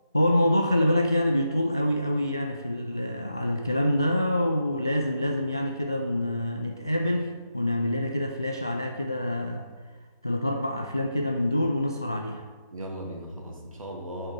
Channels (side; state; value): both; inverted; correlation -0.85